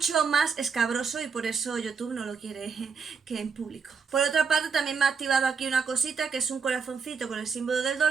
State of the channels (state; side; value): quieter; left; 5.6 dB